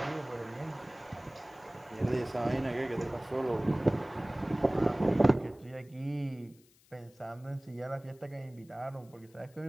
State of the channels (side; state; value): left; noise; hiss, 29 dB below the sound